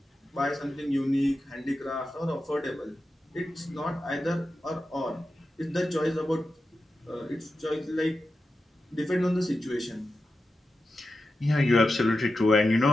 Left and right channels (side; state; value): both; normal; correlation 0.91